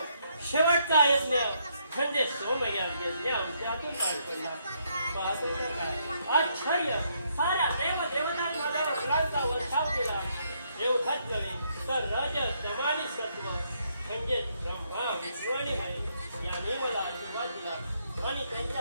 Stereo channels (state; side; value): inverted; both; correlation -0.73